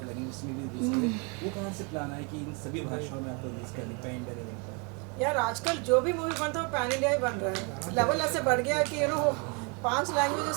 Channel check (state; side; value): quieter; left; 33.6 dB